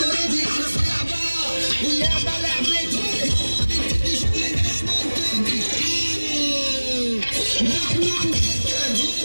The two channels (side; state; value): both; inverted; correlation -1.00